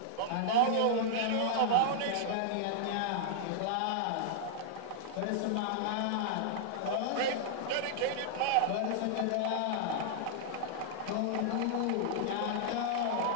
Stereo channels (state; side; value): different; both; correlation -0.01